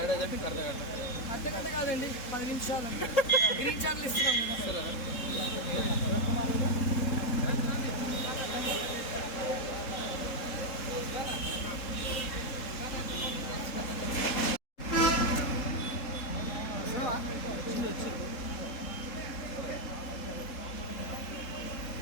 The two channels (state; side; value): late; right; 3.7 ms